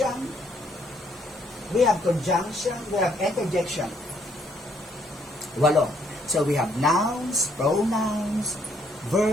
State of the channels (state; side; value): normal; both; correlation 0.69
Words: we have conjunction, we have interjection. 8. So we have nouns, pronouns,